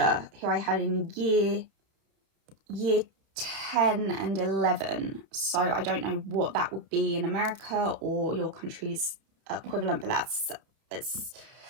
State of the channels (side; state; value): left; late; 31 ms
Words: who I had in year 10 and 11, so I don't know what that would be in America or your country's equivalent, but it's